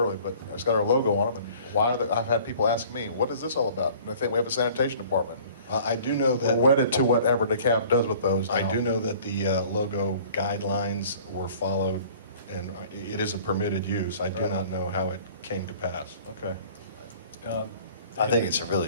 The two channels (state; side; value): inverted; both; correlation -0.50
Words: but it's got our logo on them. And why I've had people ask me, what is this all about? And I think we have a sanitation department. I do know that we're wedded to whatever DeKalb does with those now. I do know that the logo guidelines were followed, and it is a permitted use. I do not know how it came to pass. Okay. I think it's a